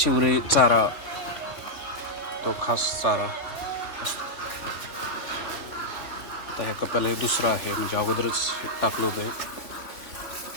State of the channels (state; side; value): late; right; 3.5 ms